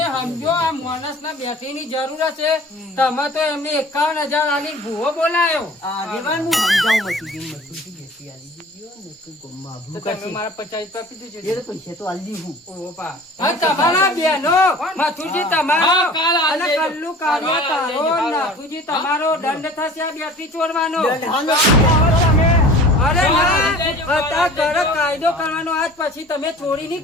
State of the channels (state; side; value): normal; both; correlation 0.44